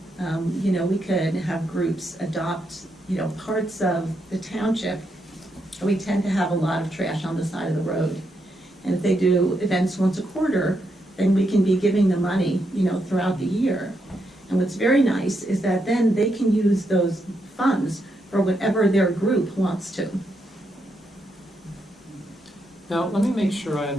You know, we could have groups adopt, you know, parts of the township. We tend to have a lot of trash on the side of the road. And if they do events once a quarter, then we can be giving them money, you know, throughout the year. And what's very nice is that then they can use those funds for whatever their group wants to. Now, let me make sure I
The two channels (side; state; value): both; normal; correlation 0.81